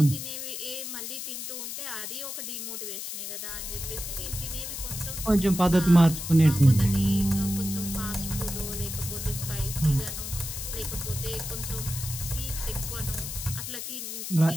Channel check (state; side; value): noise; left; hiss, 6 dB below the sound